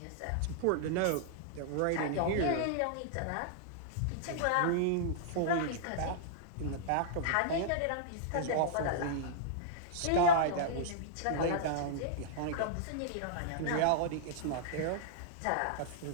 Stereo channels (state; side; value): different; both; correlation -0.02